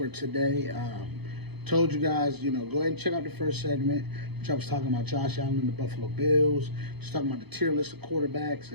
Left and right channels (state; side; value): late; left; 0.98 ms